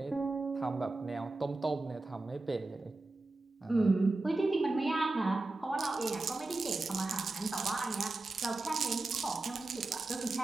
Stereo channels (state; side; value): quieter; left; 3.1 dB